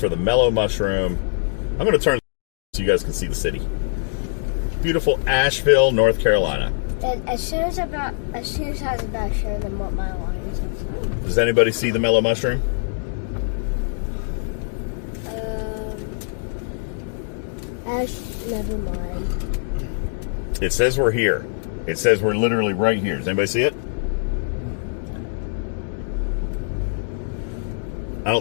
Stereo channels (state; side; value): silent; right; digital silence